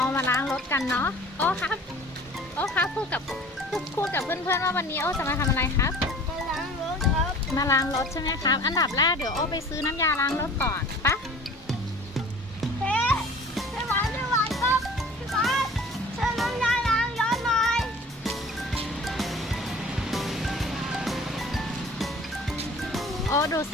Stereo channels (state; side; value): normal; both; correlation 0.45